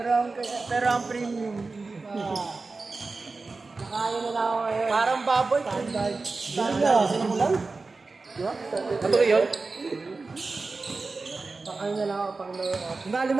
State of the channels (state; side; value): quieter; left; 3.8 dB